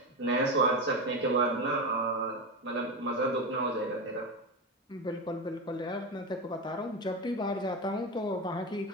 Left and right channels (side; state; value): both; normal; correlation 0.17